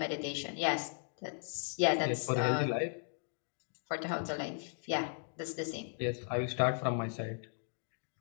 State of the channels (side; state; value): right; silent; 53 dB below the other